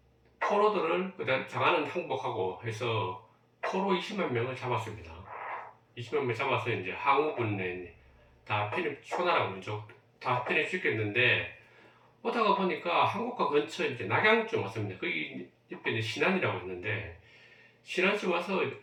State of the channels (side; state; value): both; identical; correlation 1.00